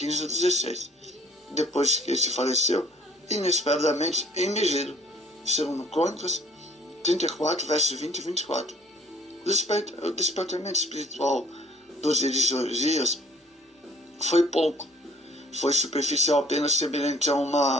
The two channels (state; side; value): normal; both; correlation 0.59